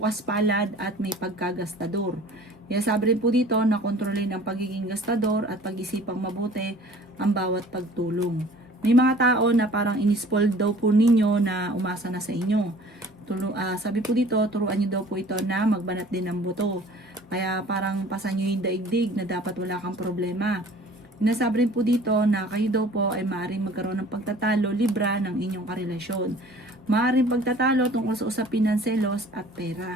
palad at may pagkagastador. Kaya sabi rin po dito na kontrolin ang pagiging gastador at pag-isipang mabuti ang bawat pagtulong. May mga tao na parang inispoiled daw po ninyo na umasa na sa inyo. Sabi po dito, turuan nyo daw po ito na magbanat din ng buto. Kaya parang pasan nyo yung daigdig na dapat wala kang problema. Sinasabi rin po dito na kayo daw po ay maaaring magkaroon ng pagtatalo, libra ng inyong karelasyon. Maaaring pagtatalo tungkol sa usapin ng selos at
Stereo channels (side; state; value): both; normal; correlation 0.49